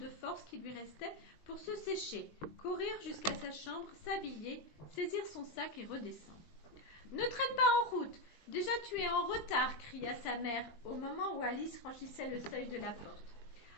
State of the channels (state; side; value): late; right; 20 ms